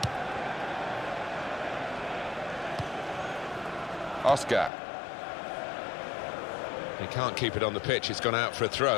Oscar. He can't keep it on the pitch, it's gone out for a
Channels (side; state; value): right; drops out; at 4.7 s